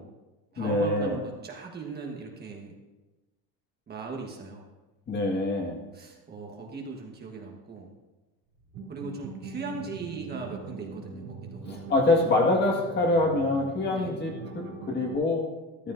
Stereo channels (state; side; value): normal; both; correlation 0.32